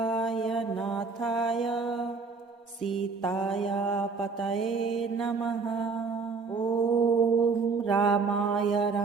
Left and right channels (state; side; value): quieter; left; 4.7 dB